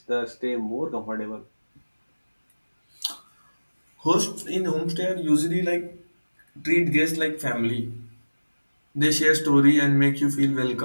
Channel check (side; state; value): both; inverted; correlation -1.00